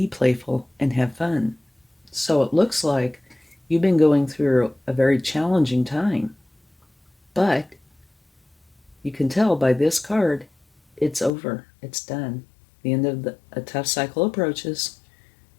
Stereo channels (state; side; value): drops out; right; at 11.3 s